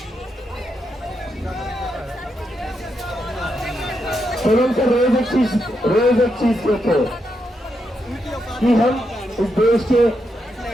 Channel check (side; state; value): both; normal; correlation 0.82